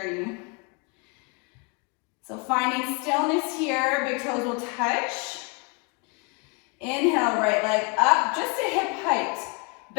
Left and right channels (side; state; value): right; quieter; 31.6 dB